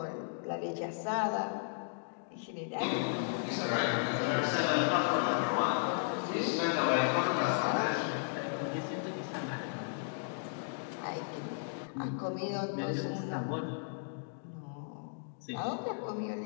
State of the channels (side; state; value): right; silent; digital silence